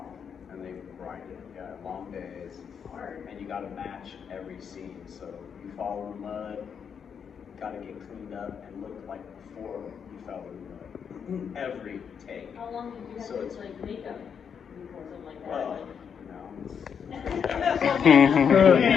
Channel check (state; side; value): quieter; right; 7.1 dB